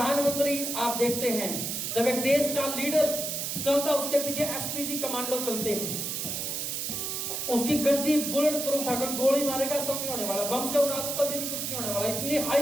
आप देखते हैं, जब एक देश का लीडर चलता उसके पीछे एसपीजी कमांडो चलते हैं, उसकी गड्डी बुलेट प्रूफ है, गोली मारेगा सब नहीं होने वाला, बम से उड़ा दो तभी भी कुछ नहीं होने वाला, इतनी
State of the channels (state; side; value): noise; right; hiss, 3 dB below the sound